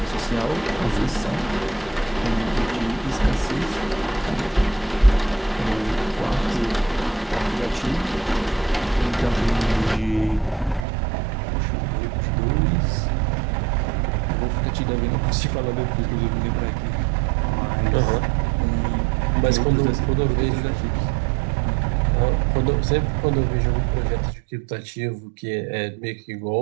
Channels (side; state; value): left; drops out; at 10.9 s